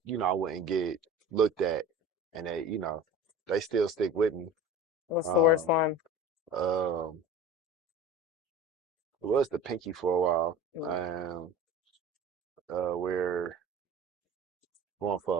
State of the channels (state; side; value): normal; both; correlation 0.38